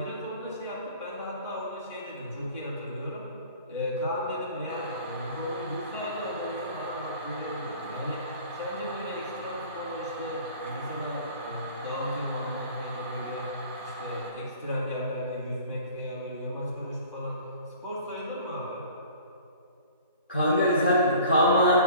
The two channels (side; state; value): both; inverted; correlation -0.46